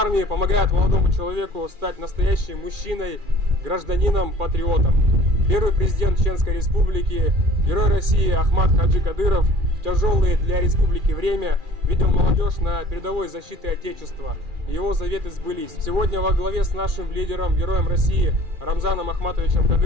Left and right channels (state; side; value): late; left; 2.4 ms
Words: помогает молодому человеку стать настоящим мужчиной, гражданином, патриотом. Первый президент Чеченской Республики, герой России Ахмад Хаджи Кадыров в тяжелое для республики время видел молодежь на передовой защиты Отечества. Его заветы сбылись. Сегодня во главе с нашим лидером, героем России Рамзаном Ахматовичем